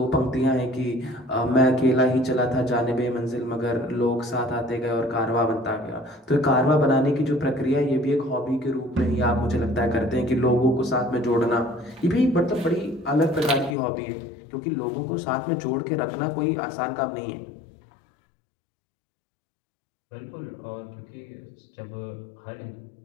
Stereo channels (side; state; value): right; drops out; at 13.8 s